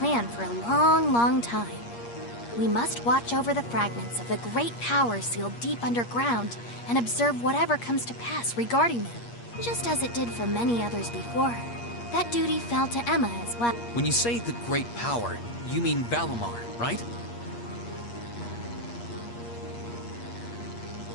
for a long, long time. We must watch over the fragments of the great power sealed deep underground and observe whatever comes to pass regarding them, just as it did for many others before her. That duty fell to Emma as well. When you say the great power, you mean Valimar, right?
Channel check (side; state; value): right; late; 8.5 ms